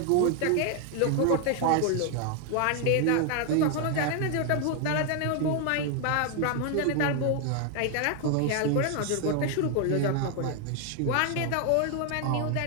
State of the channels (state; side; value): different; both; correlation 0.00